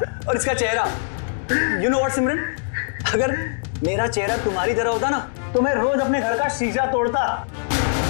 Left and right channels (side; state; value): right; silent; digital silence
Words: और इसका चेहरा, यू नो व्हाट सिमरन, अगर मेरा चेहरा तुम्हारी तरह होता ना तो मैं रोज अपने घर का शीशा तोड़ता।